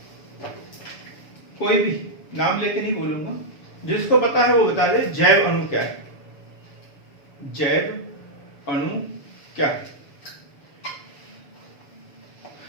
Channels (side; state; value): right; late; 6.9 ms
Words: कोई भी नाम लेके नहीं बोलूंगा, जिसको पता है वो बता दे। जैव अणु क्या है? जैव अणु क्या है?